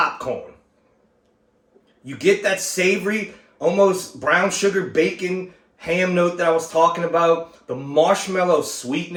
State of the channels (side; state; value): both; identical; correlation 1.00